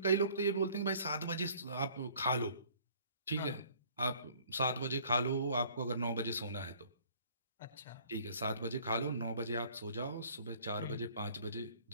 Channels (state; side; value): inverted; both; correlation -0.55